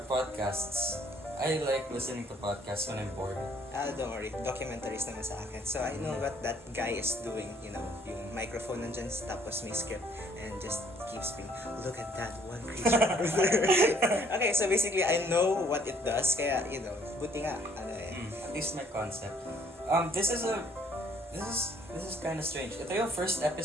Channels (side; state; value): both; normal; correlation 0.62